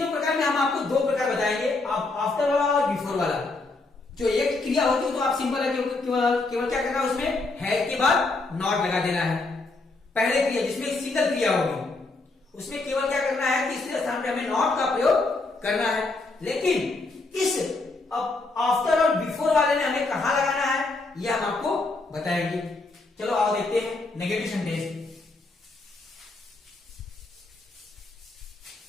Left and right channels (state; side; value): quieter; right; 3.4 dB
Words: प्रकार में हम आपको 2 प्रकार बताएंगे, आफ्टर वाला और बिफोर वाला। जो एक क्रिया होती है तो आप सिंपल है, केवल क्या करना है, उसमें है के बाद नॉट लगा देना है। पहले क्रिया जिसमें सिंगल क्रिया होगी उसमें केवल क्या करना है, तीसरे स्थान पे हमें नॉट का प्रयोग करना है। लेकिन इस आफ्टर और बिफोर वाले में हमें कहां लगाना है, यह हम आपको बताएंगे। चलो आओ देखते हैं नेगेटिव सेंटेंस।